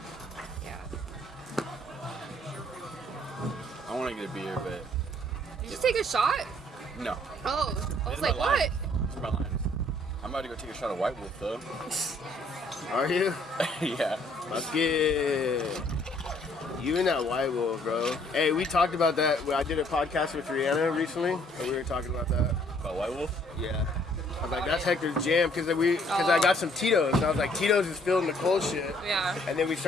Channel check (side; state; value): both; normal; correlation 0.63